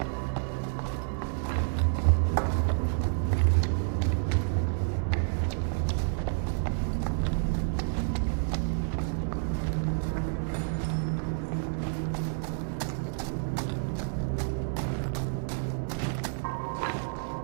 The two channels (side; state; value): left; silent; 58 dB below the other